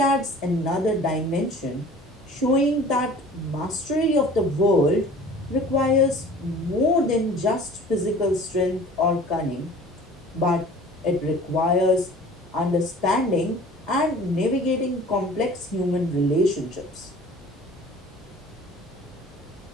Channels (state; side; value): normal; both; correlation 0.46